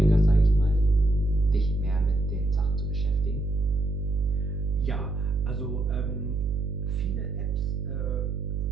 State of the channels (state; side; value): noise; right; hum, 2 dB below the sound